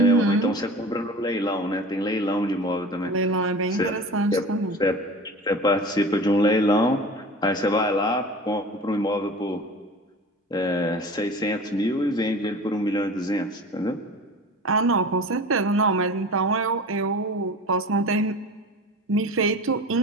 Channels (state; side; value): normal; both; correlation 0.37